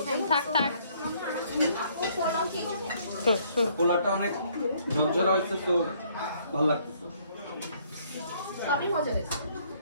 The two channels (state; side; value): inverted; both; correlation -0.64